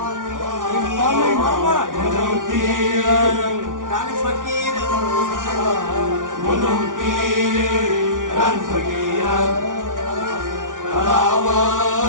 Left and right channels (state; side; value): late; left; 0.88 ms